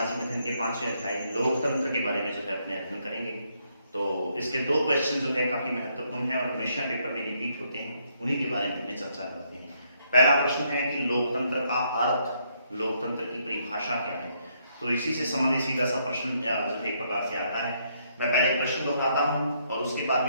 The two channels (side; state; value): both; inverted; correlation -0.73